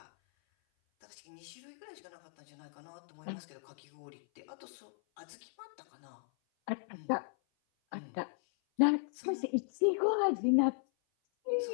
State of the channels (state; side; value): silent; right; 53 dB below the other